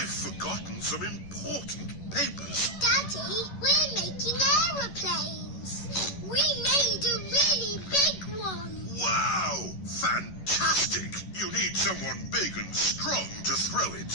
forgotten some important papers. Daddy, we're making aeroplanes. We made a really big one. Wow, fantastic. You need someone big and strong to throw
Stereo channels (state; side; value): late; right; 11 ms